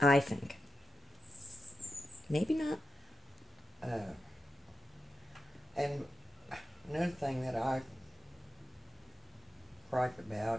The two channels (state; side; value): normal; both; correlation 0.91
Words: I think. Maybe not. And another thing that I gripe